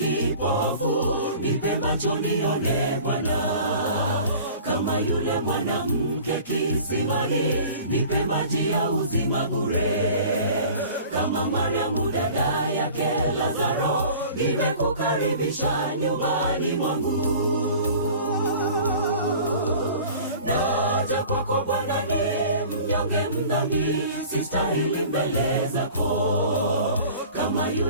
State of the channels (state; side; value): inverted; both; correlation -0.44